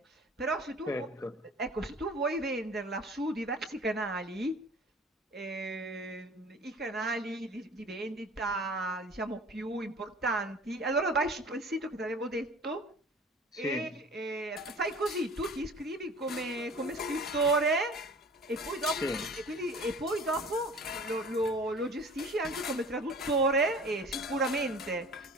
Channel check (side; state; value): both; normal; correlation 0.43